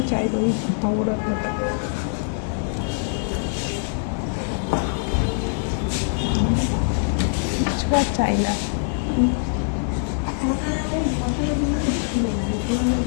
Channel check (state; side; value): silent; right; 60 dB below the other